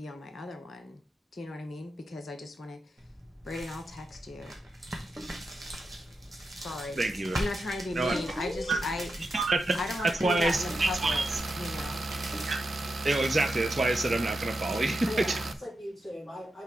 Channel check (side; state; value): both; normal; correlation 0.87